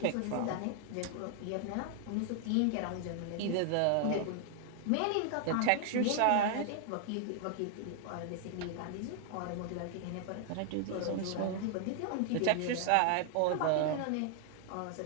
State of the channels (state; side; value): different; both; correlation 0.00